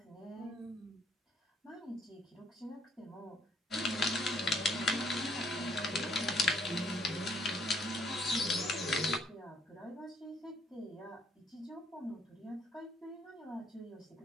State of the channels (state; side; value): normal; both; correlation 0.66